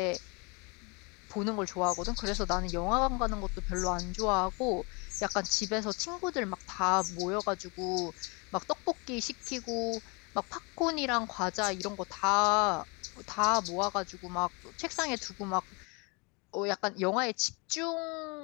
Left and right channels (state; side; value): quieter; right; 30.3 dB